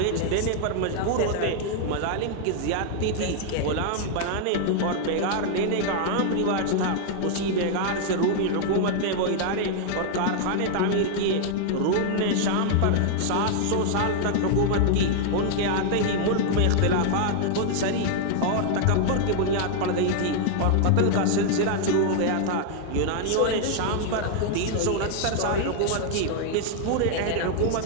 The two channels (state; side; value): different; both; correlation 0.00